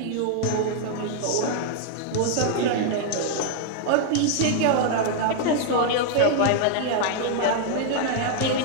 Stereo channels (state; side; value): different; both; correlation 0.00